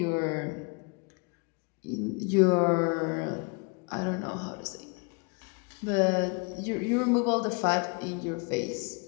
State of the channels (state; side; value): quieter; right; 33.4 dB